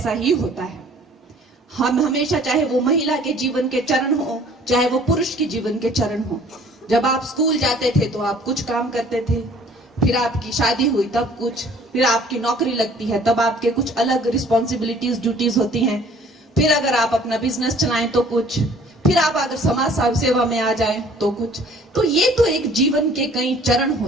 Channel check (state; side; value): normal; both; correlation 0.54